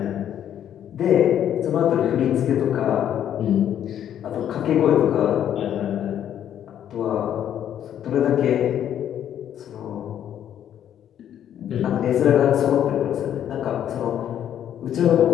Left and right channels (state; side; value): quieter; right; 10.2 dB